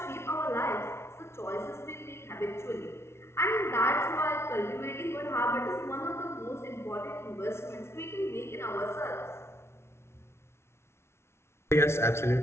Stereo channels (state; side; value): late; right; 0.13 ms